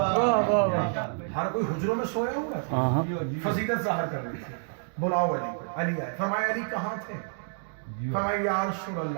ہر کوئی حجروں میں سویا ہوا تھا، فضیلت ظاہر کرنی تھی، بلاؤ علی کو، علی آئے، فرمایا علی کہاں تھے؟ فرمایا یا رسول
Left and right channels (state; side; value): silent; left; 59 dB below the other